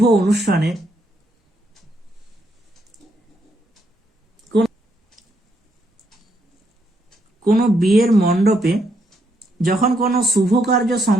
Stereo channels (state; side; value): normal; both; correlation 0.76